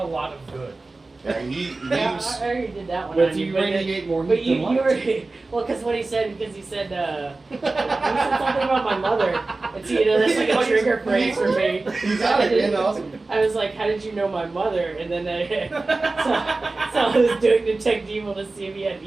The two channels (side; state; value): left; quieter; 3.4 dB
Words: lot of good. Yeah, Yeah, he's I already did that one. But on you but radiate more But heat you than light. were well, because what he said, he said he said something about my mother, and so that's like a trigger phrase for me. You got it, man. Awesome. I was like, "How did you know my mother?" And then so I was doing detect evil to see if he had